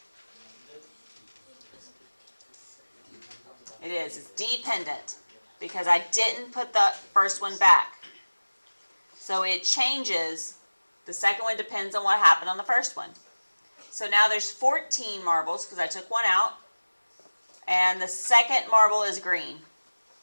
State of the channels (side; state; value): both; inverted; correlation -1.00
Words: It is. It's dependent because I didn't put the first one back. So it changes. The second one depends on what happened on the first one. So now there's 14 marbles because I took 1 out. And the second marble is green.